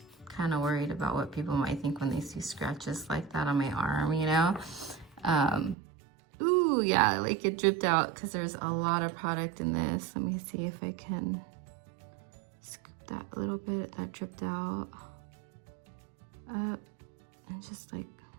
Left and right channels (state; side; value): drops out; left; at 5.8 s